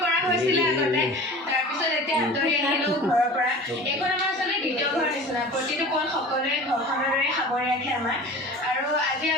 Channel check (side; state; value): both; normal; correlation 0.38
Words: কৰা হৈছিলে আগতে তাৰপিছত এতিয়া আঁতৰি আহিলোঁ ঘৰৰ পৰা এইখন আমাৰ আচলতে দ্বিতীয় ঘৰ নিচিনা প্ৰতিটো পল সকলোৱে ঘৰখনৰ দৰে সামৰি ৰাখে আমাৰ আৰু আজি